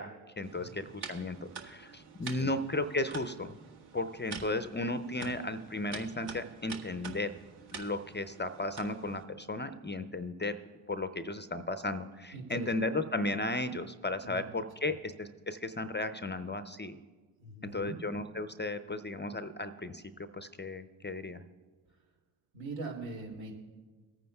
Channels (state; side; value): normal; both; correlation 0.16